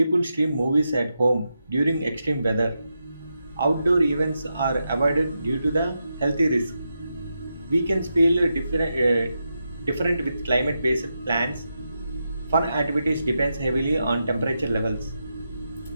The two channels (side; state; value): both; inverted; correlation -0.86